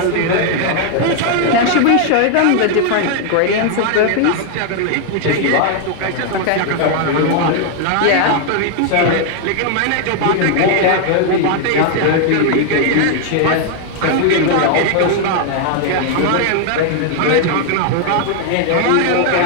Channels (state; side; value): different; both; correlation 0.00